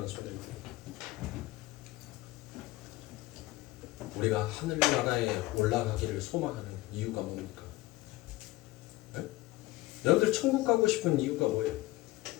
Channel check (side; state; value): right; quieter; 18.9 dB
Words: 성도님, 우리가 하늘나라에 올라가기를 소망하는 이유가 뭡니까? 네? 여러분들 천국 가고 싶은 이유가 뭐예요?